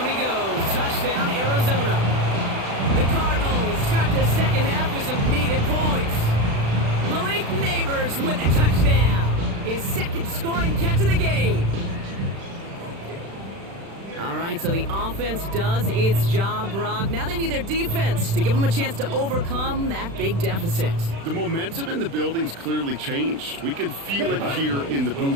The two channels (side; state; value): left; late; 36 ms